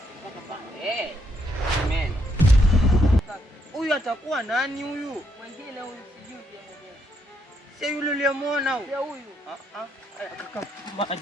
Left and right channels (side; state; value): both; normal; correlation 0.75